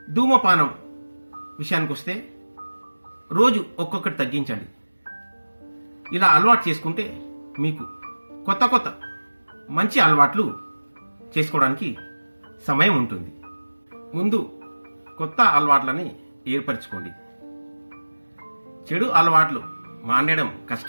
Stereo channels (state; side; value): inverted; both; correlation -1.00